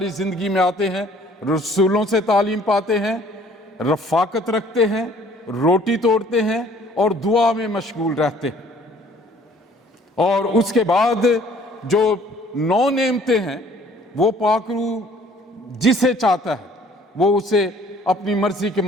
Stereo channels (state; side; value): normal; both; correlation 0.56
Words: زندگی میں آتے ہیں. رسولوں سے تعلیم پاتے ہیں, رفاقت رکھتے ہیں, روٹی توڑتے ہیں اور دعا میں مشغول رہتے ہیں. اور اس کے بعد جو 9 نعمتیں ہیں وہ پاک روح جسے چاہتا ہے وہ اسے اپنی مرضی کے